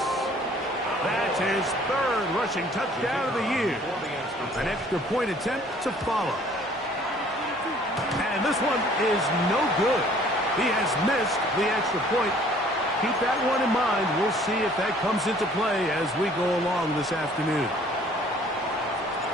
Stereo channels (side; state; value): both; normal; correlation 0.56